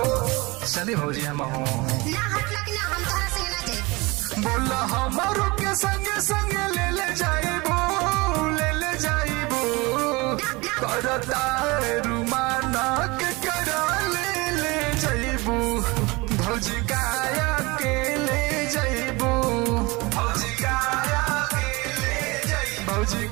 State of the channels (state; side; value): quieter; left; 24.2 dB